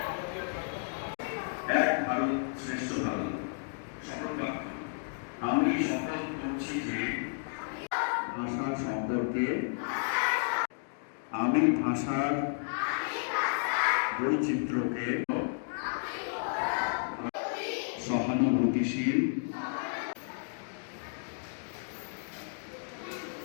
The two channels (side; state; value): right; silent; digital silence